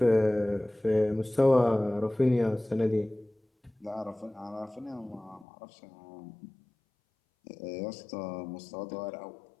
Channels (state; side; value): drops out; right; at 5.5 s